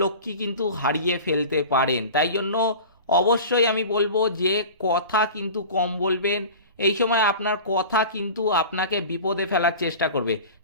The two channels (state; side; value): inverted; both; correlation -0.36